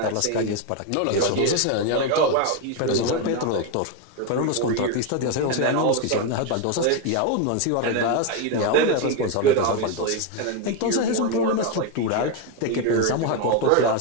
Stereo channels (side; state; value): both; different; correlation 0.02